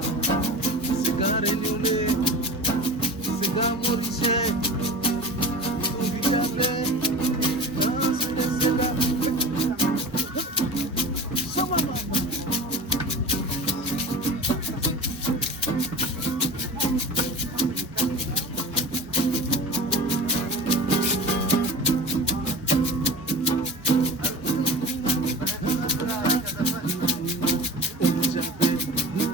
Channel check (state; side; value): normal; both; correlation 0.34